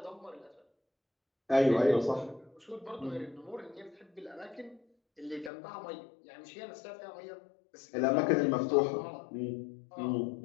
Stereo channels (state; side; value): drops out; right; at 5.5 s